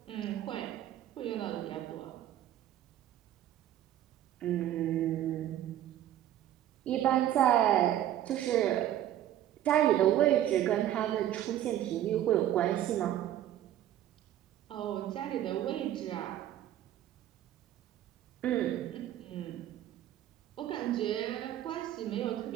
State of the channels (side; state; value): left; quieter; 12.1 dB